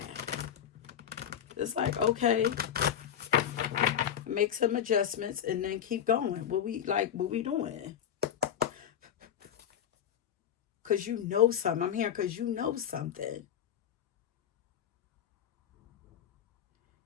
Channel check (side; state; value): right; quieter; 9.5 dB